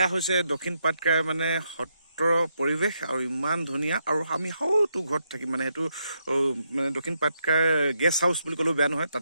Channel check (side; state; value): both; inverted; correlation -0.79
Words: হৈছে দক্ষিণ পাটকাই মানে সত্ৰৰ পৰিৱেশ আৰু ইমান ধুনীয়া আৰু আমি সৌটো ঘৰত থাকিম মানে সেইটো মানে দক্ষিণ পাটকাই গেষ্ট হাউচ বুলি ক'লেও বেয়া নহয়